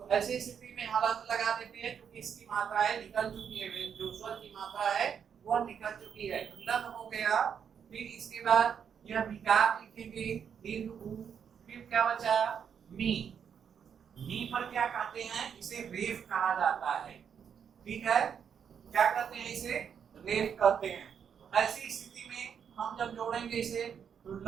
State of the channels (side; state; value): left; quieter; 7.6 dB